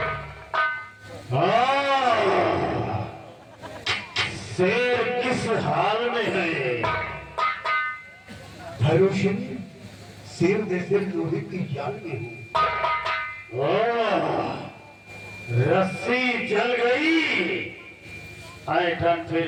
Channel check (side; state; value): both; identical; correlation 1.00